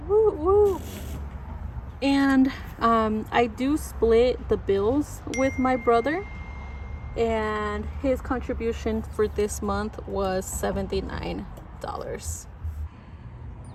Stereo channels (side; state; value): both; identical; correlation 1.00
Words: Woo woo. And I do split the bills with my brother, and his contribution for this month was $79.